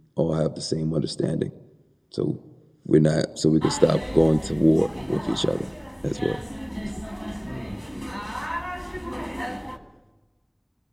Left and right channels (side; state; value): both; identical; correlation 1.00